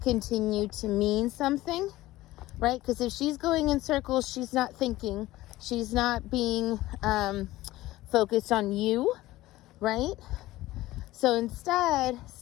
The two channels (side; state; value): right; quieter; 17.1 dB